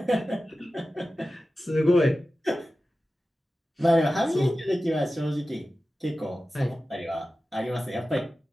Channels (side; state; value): both; normal; correlation 0.94